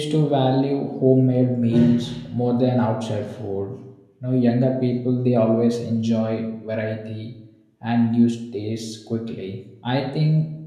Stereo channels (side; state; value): both; identical; correlation 1.00